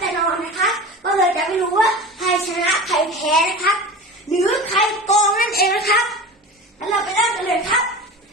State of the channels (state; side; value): normal; both; correlation 0.32